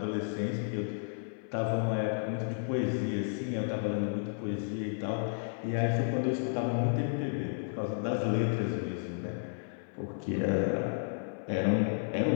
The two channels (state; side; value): silent; right; 56 dB below the other